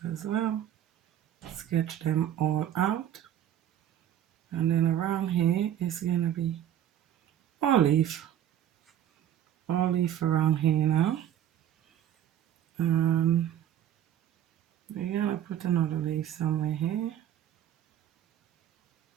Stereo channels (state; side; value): quieter; left; 10.7 dB